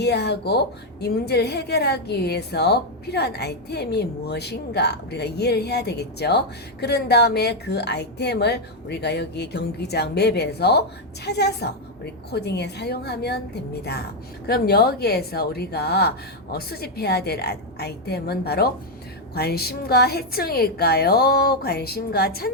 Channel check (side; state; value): both; normal; correlation 0.02